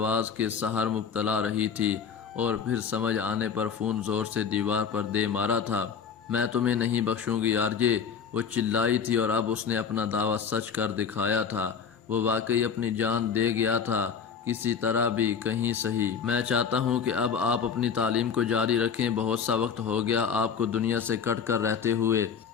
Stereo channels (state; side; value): quieter; right; 6.7 dB